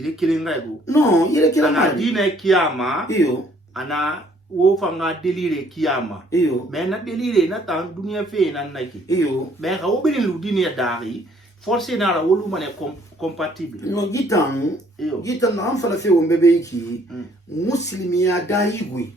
kilenga ego non ile kilenga ana dine kiyama iyo ana wo fanga delire kiyama iyo mais na delire na tan dunia fe na naki iyo mais ka wo bin lu dine dari forcé na la wolu mane compatible no gitan na am fala fe wo mbebe ki muslimiya dayigui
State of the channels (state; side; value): normal; both; correlation 0.62